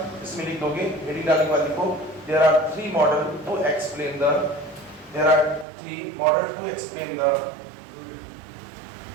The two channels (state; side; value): drops out; left; at 5.7 s